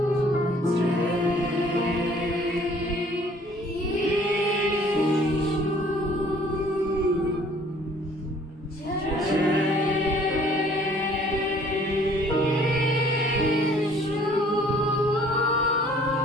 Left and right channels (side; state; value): both; normal; correlation 0.56